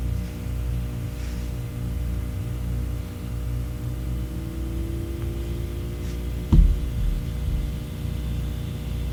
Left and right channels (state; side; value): identical; both; correlation 1.00